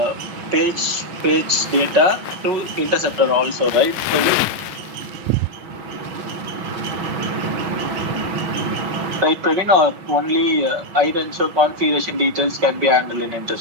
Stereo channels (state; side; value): late; left; 5.4 ms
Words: page data to interceptor also, right? Right, Praveen, or only hide and show configuration details can be handled in